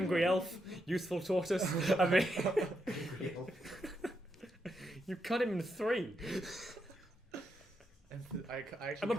elf, useful tortoise. I mean, you cut him in 3. I actually I'm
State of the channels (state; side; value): normal; both; correlation 0.82